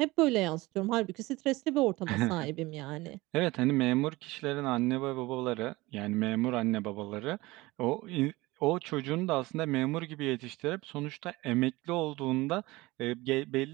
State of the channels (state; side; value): quieter; left; 20.7 dB